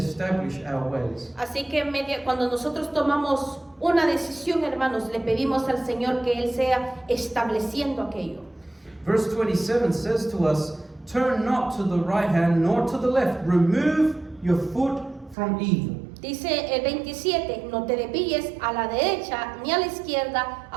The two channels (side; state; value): left; drops out; at 15.4 s